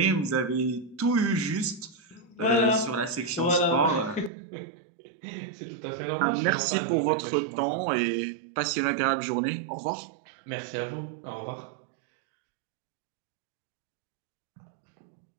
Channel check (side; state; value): left; drops out; at 4.3 s